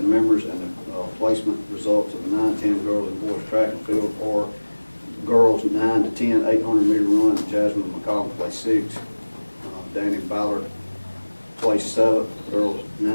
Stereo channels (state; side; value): inverted; both; correlation -1.00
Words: members and the placement results of the 9-10 girls and boys track and field are girls 9 to 10 800-meter run, Jasmine McCollum placed sixth. Danny Ballard placed seventh. Girls